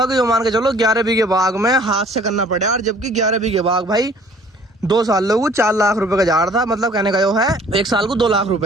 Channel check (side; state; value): both; normal; correlation 0.53